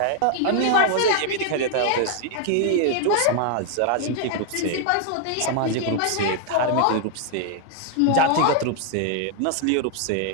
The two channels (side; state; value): both; different; correlation 0.00